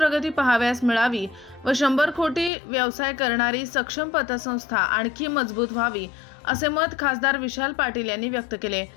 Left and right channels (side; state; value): right; drops out; at 2.5 s